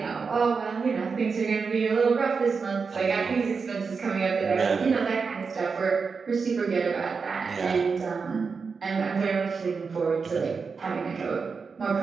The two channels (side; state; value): left; quieter; 5.1 dB